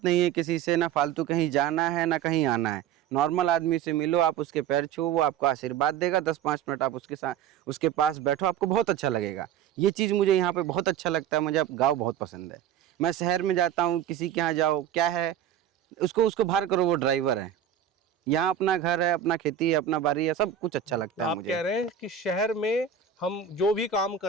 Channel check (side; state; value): left; quieter; 9.3 dB